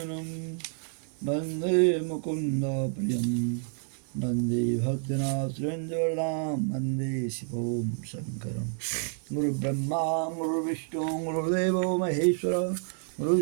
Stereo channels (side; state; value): left; silent; 58 dB below the other